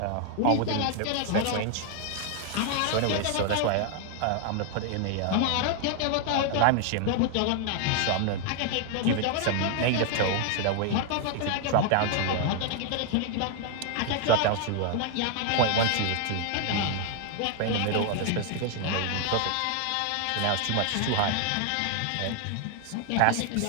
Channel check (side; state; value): both; different; correlation 0.00